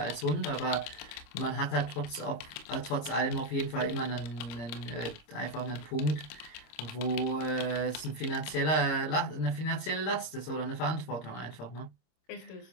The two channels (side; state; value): right; late; 26 ms